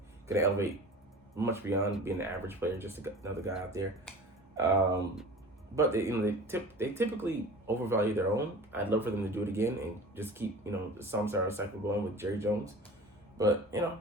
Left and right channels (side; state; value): both; normal; correlation 0.39